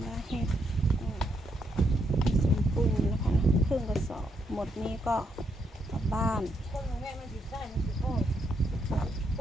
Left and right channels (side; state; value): both; normal; correlation 0.78